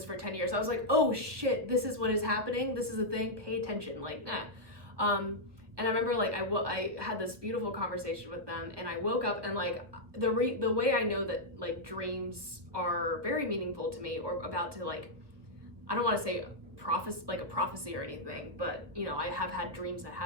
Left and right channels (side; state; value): left; late; 1.3 ms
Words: for 10 years, I was like, oh shit, this is what is happening. This is a thing, pay attention, like, nah. And I remember like I had this beautiful conversation with them, and I woke up and like the way I know that like dreams are very meaningful to me, or about to like, I don't want to say a prophecy or anything, but you know, I have had dreams that